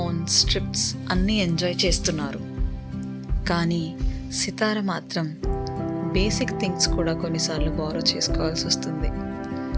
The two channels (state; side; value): identical; both; correlation 1.00